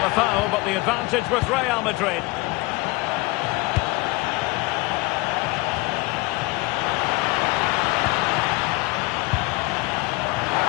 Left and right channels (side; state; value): right; quieter; 23.1 dB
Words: a foul, but the advantage with Real Madrid.